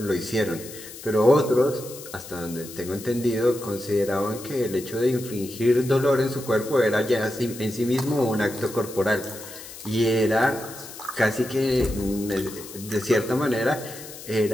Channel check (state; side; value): noise; left; hiss, 14 dB below the sound